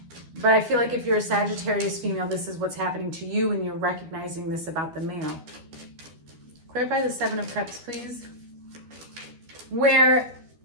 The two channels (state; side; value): late; left; 12 ms